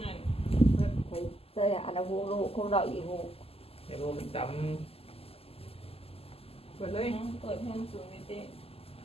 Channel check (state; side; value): late; right; 0.29 ms